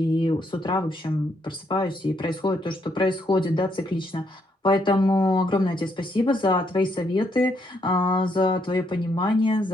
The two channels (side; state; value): both; normal; correlation 0.75